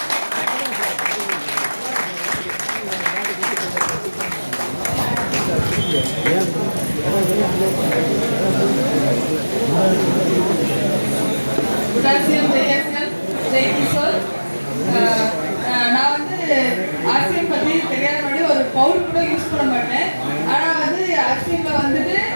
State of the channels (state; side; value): inverted; both; correlation -1.00